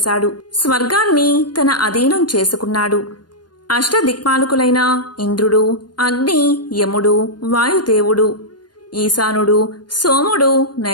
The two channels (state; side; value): late; right; 0.70 ms